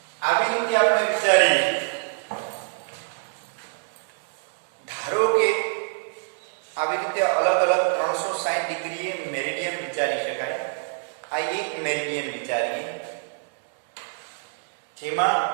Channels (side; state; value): left; silent; 59 dB below the other